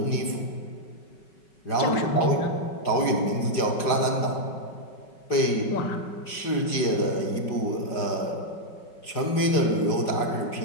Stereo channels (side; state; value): right; late; 5.3 ms